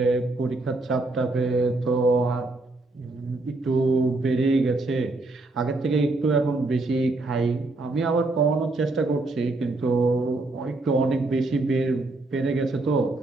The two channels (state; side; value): quieter; left; 3.1 dB